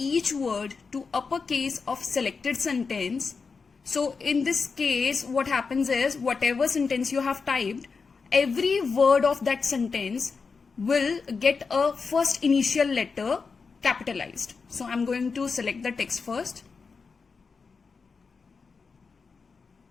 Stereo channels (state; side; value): quieter; right; 5.0 dB